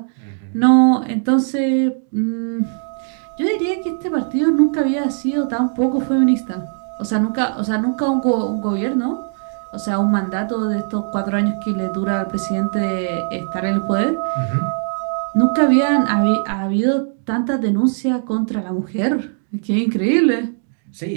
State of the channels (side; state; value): left; silent; digital silence